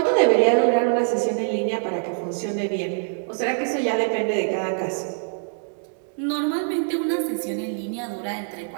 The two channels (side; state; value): left; silent; digital silence